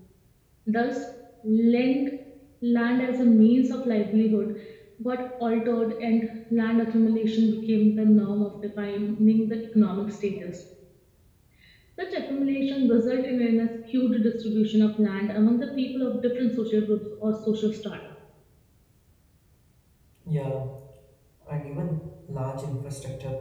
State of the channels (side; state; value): both; identical; correlation 1.00